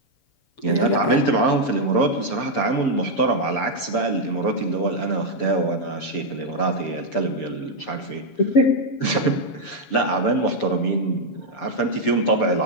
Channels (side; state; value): right; late; 7.1 ms